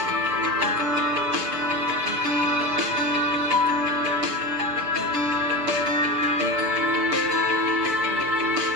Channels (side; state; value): left; late; 6.9 ms